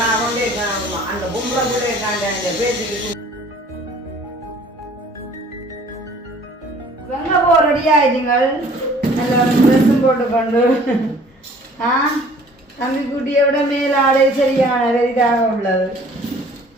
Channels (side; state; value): both; normal; correlation 0.53